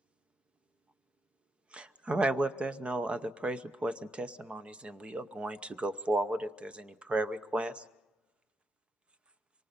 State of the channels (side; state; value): both; normal; correlation 0.83